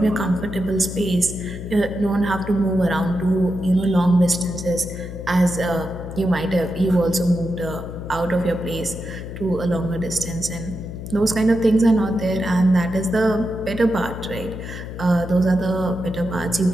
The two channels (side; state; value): left; noise; hum, 9 dB below the sound